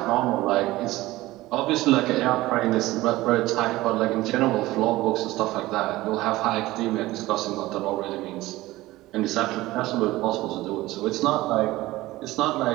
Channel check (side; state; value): left; quieter; 18.0 dB